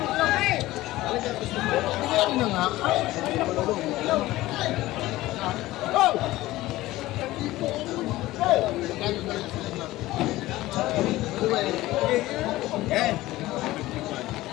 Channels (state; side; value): quieter; right; 17.2 dB